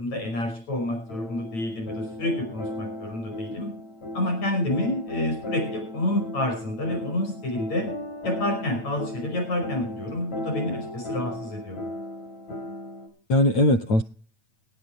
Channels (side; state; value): right; late; 8.9 ms